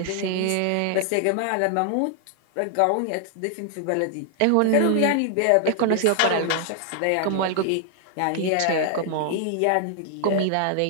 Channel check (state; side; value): different; both; correlation 0.00